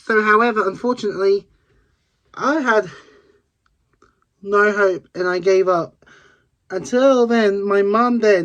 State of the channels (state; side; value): identical; both; correlation 1.00